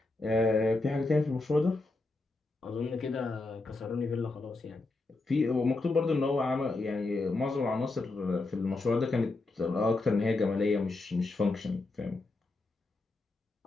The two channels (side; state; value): right; quieter; 3.3 dB